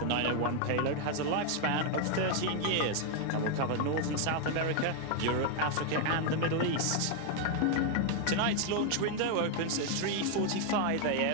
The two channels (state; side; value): different; both; correlation 0.01